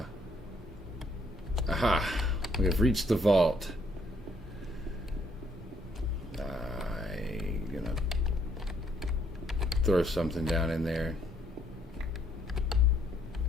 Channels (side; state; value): both; normal; correlation 0.68